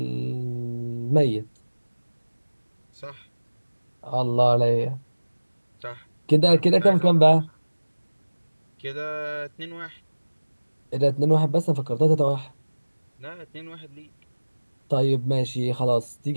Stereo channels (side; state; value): both; inverted; correlation -1.00